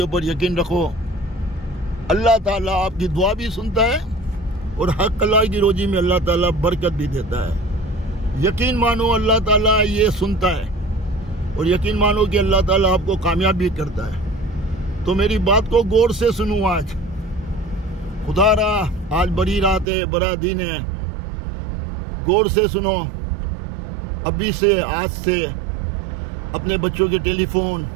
ऊपर यकीन रखो, अल्लाह ताला आपकी दुआ भी सुनता है और हक हलाल की रोजी में अल्लाह ताला बरकत भी देता है। यकीन मानो अल्लाह ताला ये सुनता है और यकीन मानो कि अल्लाह ताला आपको कामयाब भी करता है। तो मेरी बात को गौर से सुनो। आज खुदारा आज बड़ी रात है, बड़ा दिन है, गौर से सुनो। अभी से, आज से अपने बच्चों के टेलीफोन,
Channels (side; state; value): left; drops out; at 19.9 s